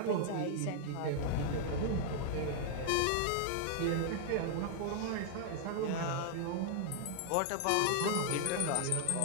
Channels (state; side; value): different; both; correlation 0.00